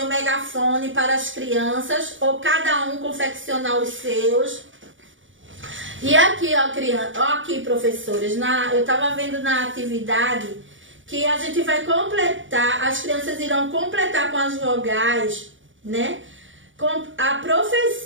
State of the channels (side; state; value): left; late; 0.56 ms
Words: megafone para as crianças, ou cada um confeccionar os seus. E aqui, ó, criança, ó, aqui, professores, eu estava vendo na atividade que a gente vai completar, as crianças irão completar com as vogais, né? Com a